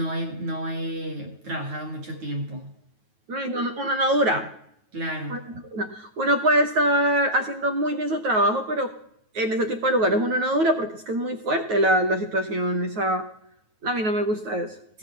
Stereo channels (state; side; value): late; left; 9.3 ms